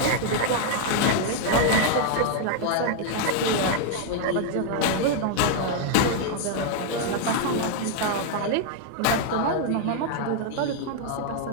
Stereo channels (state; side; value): different; both; correlation 0.00